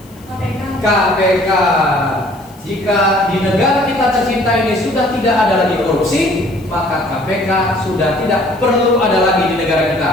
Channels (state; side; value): noise; left; hiss, 27 dB below the sound